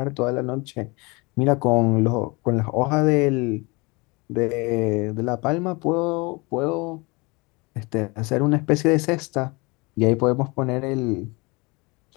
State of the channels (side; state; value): right; quieter; 26.5 dB